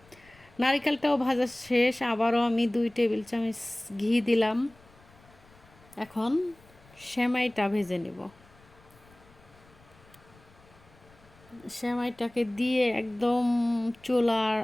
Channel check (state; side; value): noise; left; rumble, 27 dB below the sound